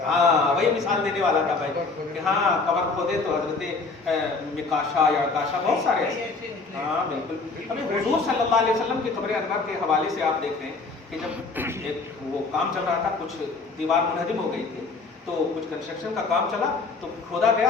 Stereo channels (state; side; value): quieter; right; 4.0 dB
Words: ہاں وہی مثال دینے والا تھا بھائی کہ ہاں قبر کھودے تو حضرت مکاشا یا کاشا بہت سارے ایسے، ہاں بالکل۔ ہمیں حضور صلی اللہ علیہ وسلم کے قبر انور کے حوالے سے آپ دیکھ رہے ہیں کہ جب ایک وہ کام چل رہا تھا، کچھ دیوار منہدم ہو گئی تھی تو کچھ کنسٹرکشن کا کام چلا تو کھودا